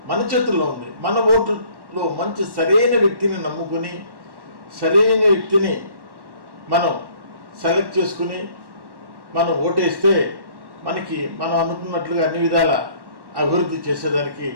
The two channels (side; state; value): left; late; 1.1 ms